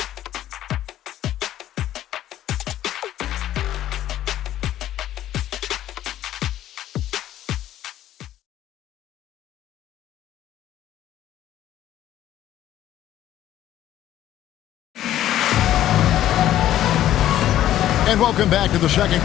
And welcome back to the second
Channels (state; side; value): quieter; right; 12.6 dB